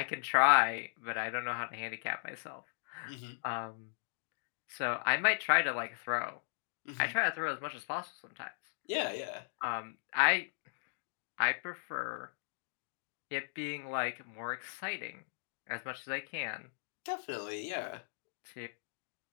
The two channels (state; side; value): silent; right; digital silence